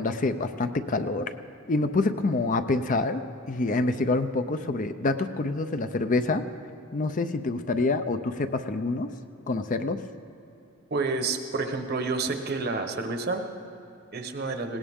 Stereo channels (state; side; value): normal; both; correlation 0.39